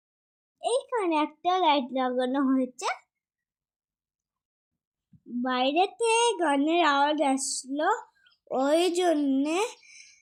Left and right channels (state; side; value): identical; both; correlation 1.00